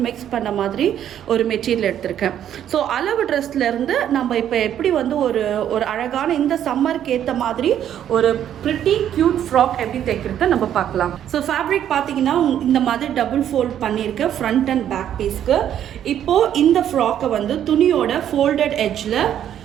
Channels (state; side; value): quieter; left; 10.3 dB